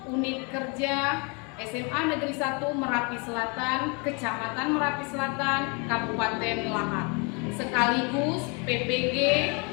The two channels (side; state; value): right; quieter; 32.5 dB